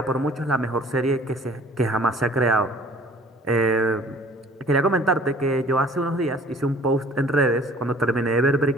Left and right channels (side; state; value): both; normal; correlation 0.52